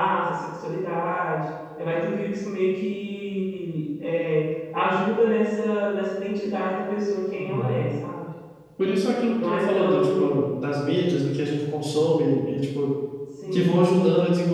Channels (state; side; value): identical; both; correlation 1.00